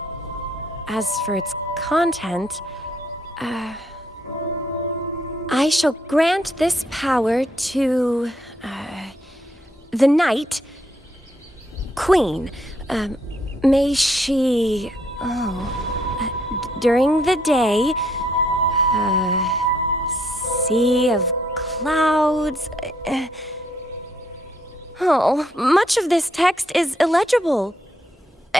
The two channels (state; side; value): normal; both; correlation 0.71